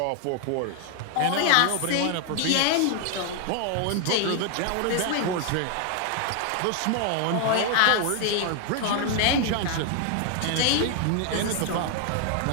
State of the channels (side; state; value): both; different; correlation 0.00